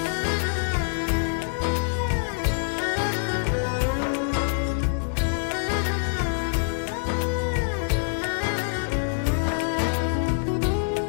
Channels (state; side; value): silent; right; digital silence